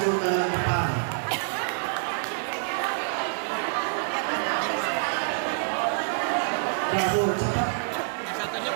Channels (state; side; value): silent; left; digital silence